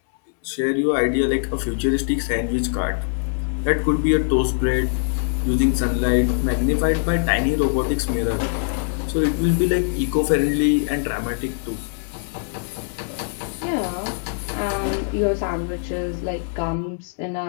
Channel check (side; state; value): right; silent; digital silence